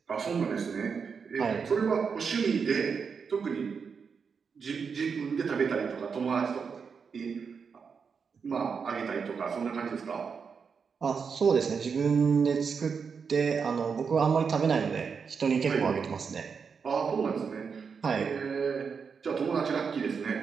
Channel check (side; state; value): left; quieter; 5.9 dB